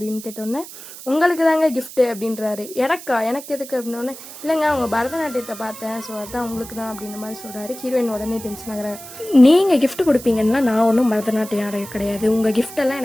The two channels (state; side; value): noise; right; hiss, 14 dB below the sound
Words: கேட்டோன்னே, உங்களுக்கு தாங்க கிஃப்ட்டு அப்படின்றாரு. எனக்கு எதுக்கு அப்படின்னோடனே, இல்லைங்க அவங்க பரதநாட்டியத்தை பார்த்தேன், ஸோ அதுதான் உங்களுக்கு தான் அப்படின்ற மாதிரி சொல்கிறாரு. ஹீரோயின் உடனே டென்ஷன் ஆகிறாரு. நீங்கள் கிஃப்ட் கொடுப்பீங்கன்னா நான் ஒன்றும் பரதநாட்டியம் ஆட கிடையாது, உங்கள் கிஃப்டெல்லாம்